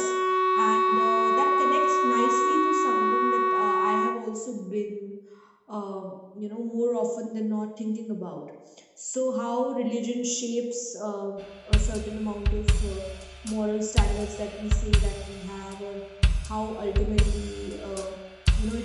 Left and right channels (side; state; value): both; identical; correlation 1.00